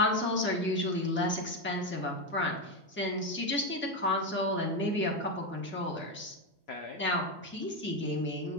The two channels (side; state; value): both; normal; correlation 0.10